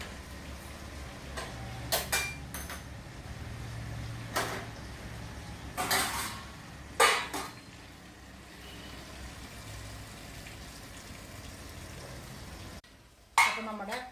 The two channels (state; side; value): identical; both; correlation 1.00